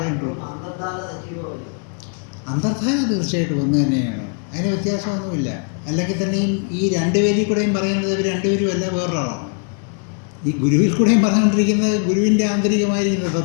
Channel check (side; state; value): right; quieter; 39.2 dB